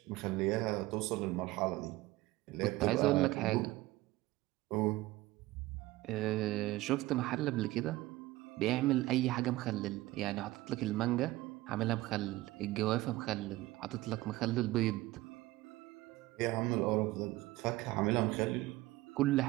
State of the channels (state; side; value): quieter; left; 18.3 dB